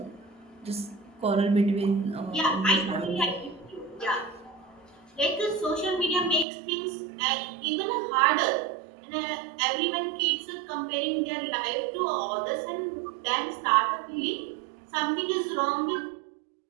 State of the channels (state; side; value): drops out; left; at 6.5 s